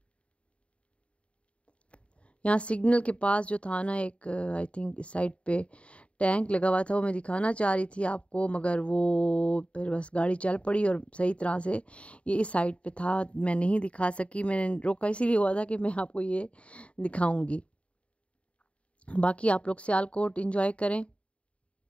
यहाँ सिग्नल के पास जो था ना, एक आई थिंक इस साइड पे टैंक लगा हुआ था, वो मैं दिखाना चाह रही थी आपको, मगर वो फिर बस गाड़ी चल पड़ी और सही तरह से ये इस साइड पे था, मैं नहीं दिखा सकी। मैंने रोका इसीलिए हुआ था कि मैं आपको ये दिखाऊंगी। बाकी आप लोग सियालकोट एंजॉय करें।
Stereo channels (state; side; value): late; right; 0.061 ms